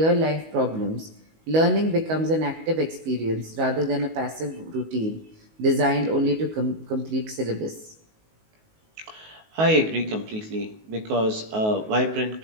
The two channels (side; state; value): left; late; 19 ms